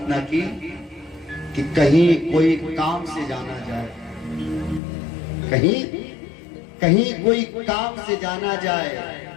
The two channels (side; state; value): right; drops out; at 4.8 s